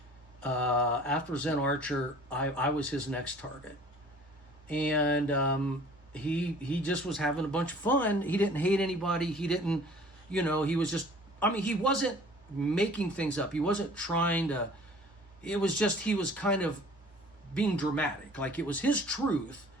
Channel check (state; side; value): normal; both; correlation 0.49